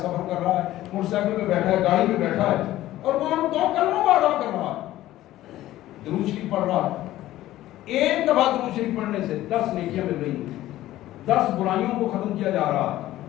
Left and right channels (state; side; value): quieter; right; 14.9 dB